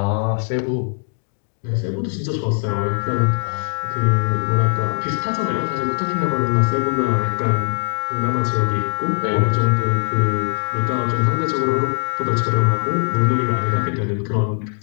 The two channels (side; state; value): right; silent; 65 dB below the other